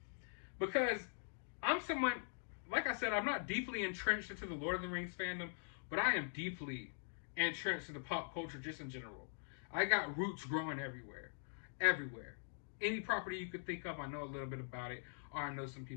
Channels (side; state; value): right; silent; digital silence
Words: Because I'm someone, like I said, I'm not deeply entrenched into the Lord of the Rings fandom, but I am deeply entrenched into pop culture just in general. I got roots growing everywhere. Everywhere. Any property you could think of, I know a little bit about it, or I know some